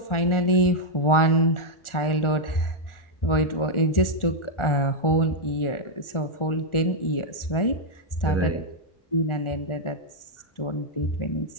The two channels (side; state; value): right; late; 1.4 ms